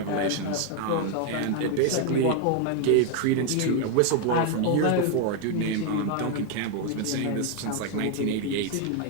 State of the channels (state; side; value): different; both; correlation 0.01